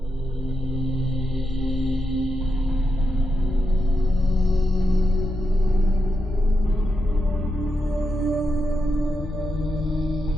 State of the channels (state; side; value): normal; both; correlation 0.85